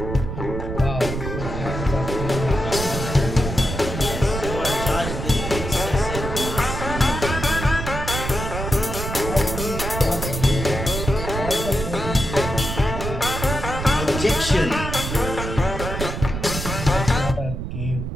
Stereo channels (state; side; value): noise; right; rumble, 5 dB below the sound